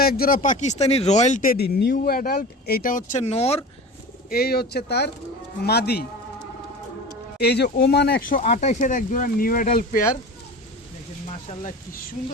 এক জোড়া Pakistani royal teddy new adult. এইটা হচ্ছে নর, এই হচ্ছে তার মাদি। এই যে ওমান 128-এর এক জোড়া নিউ অ্যাডাল্ট পেয়ার, দেখেন মাশাল্লাহ কি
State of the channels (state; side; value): normal; both; correlation 0.34